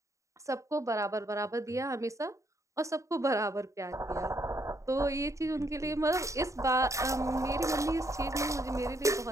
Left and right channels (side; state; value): left; late; 0.15 ms